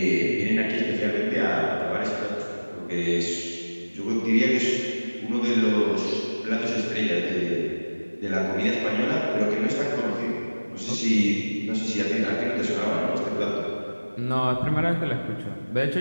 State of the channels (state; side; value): inverted; both; correlation -1.00